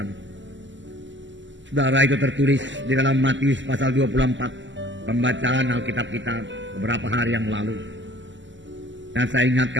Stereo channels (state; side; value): late; left; 0.54 ms